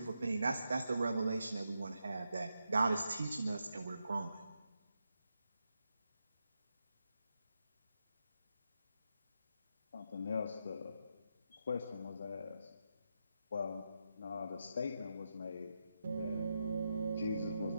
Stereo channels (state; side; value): inverted; both; correlation -0.85